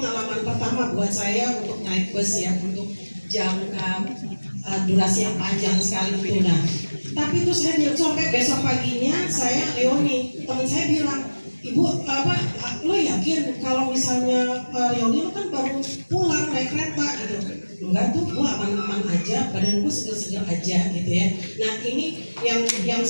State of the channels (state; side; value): inverted; both; correlation -1.00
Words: pertama buat saya untuk naik bus ya, untuk jangka durasi yang panjang sekali itu. Nah, tapi itu saya bilang sampai besok paginya saya Leoni, teman saya bilang, Ibu lo yakin kalau misalnya Leoni lo kan baru pulang naik kereta gitu? Enggak tuh, gue aman-aman aja, badan gue seger-seger aja gitu ya. Nah ini yang